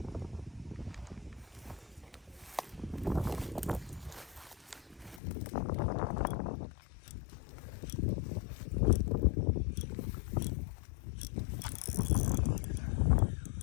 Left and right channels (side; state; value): right; drops out; at 5.2 s